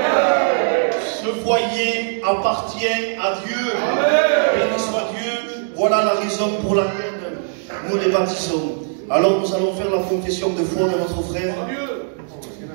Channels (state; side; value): silent; left; digital silence